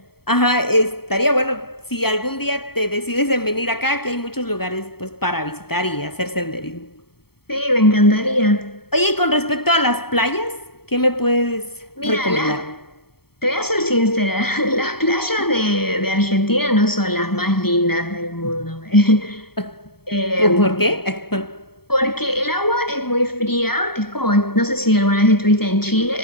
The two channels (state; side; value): late; right; 0.95 ms